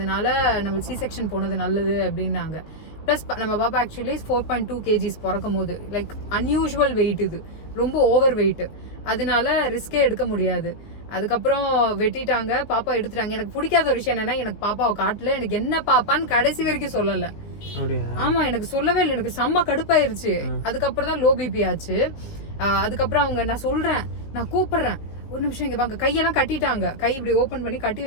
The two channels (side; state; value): right; late; 19 ms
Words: நம்ம சி செக்ஷன் போனது நல்லது அப்படின்னாங்க. ப்ளஸ் நம்ம பாப்பா ஆக்சுவலி 4.2 kgs பிறக்கும் போது லைக் அன்யூஷுவல் வெயிட். இது ரொம்ப ஓவர் வெயிட். அதனால ரிஸ்கே எடுக்க முடியாது. அதுக்கப்புறம் வெட்டிட்டாங்க, பாப்பா எடுத்துட்டாங்க. எனக்கு பிடிக்காத ஒரு விஷயம் என்னன்னா, எனக்கு பாப்பாவை காட்டல. எனக்கு என்ன பாப்பான்னு கடைசி வரைக்கும் சொல்லல. ஆமா, எனக்கு சொல்லவே இல்லை. எனக்கு செம்ம கடுப்பாயிருச்சு. அதுக்கப்புறம் தான் லோ பிபி ஆச்சு. அதுக்கப்புறம் அவங்க நான் சொல்றேன், நான் கூப்பிடுறேன், ஒரு நிமிஷம் இங்க வாங்க. கையெல்லாம் கட்டிட்டாங்க. கை இப்படி ஓபன் பண்ணி கட்டி